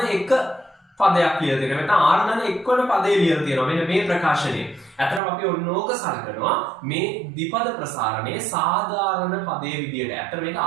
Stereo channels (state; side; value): drops out; left; at 5.2 s